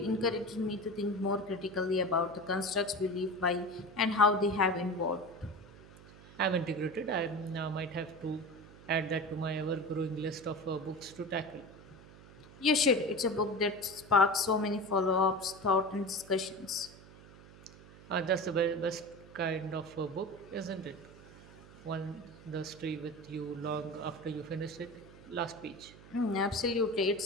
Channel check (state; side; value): noise; right; hum, 20 dB below the sound